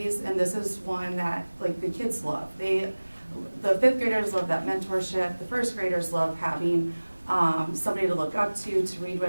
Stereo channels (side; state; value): both; inverted; correlation -1.00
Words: and this is one that like the kids love. The fifth graders love that mentorship. The first graders love having somebody to look up to read